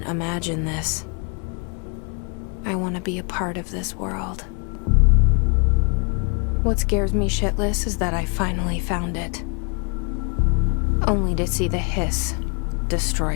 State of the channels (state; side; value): quieter; right; 36.3 dB